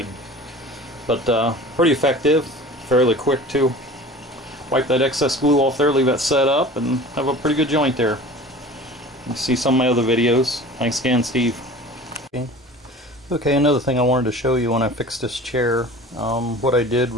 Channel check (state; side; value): normal; both; correlation 0.41